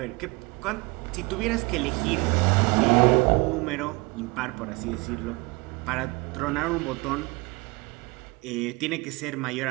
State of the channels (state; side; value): quieter; left; 26.3 dB